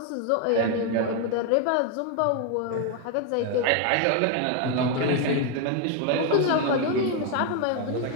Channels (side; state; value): both; different; correlation 0.01